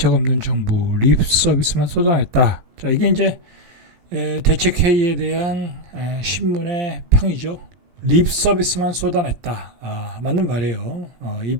없는 정부 립 서비스만 쏟아냈다. 자, 이게 이제 대책 회의에 대한 신문의 평이죠. 립 서비스만 쏟아냈다. 맞는 말이에요. 이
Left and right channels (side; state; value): left; late; 17 ms